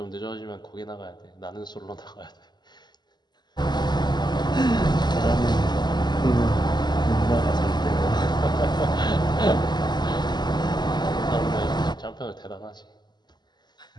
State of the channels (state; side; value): late; right; 0.21 ms